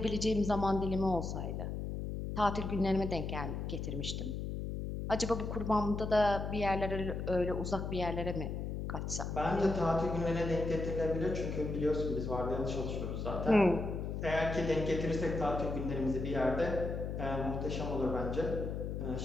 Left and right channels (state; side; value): noise; left; hum, 4 dB below the sound